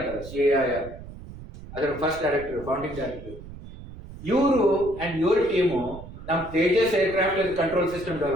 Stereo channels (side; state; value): right; noise; rumble, 14 dB below the sound